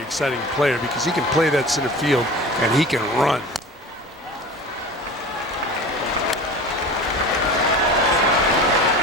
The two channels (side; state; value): both; normal; correlation 0.36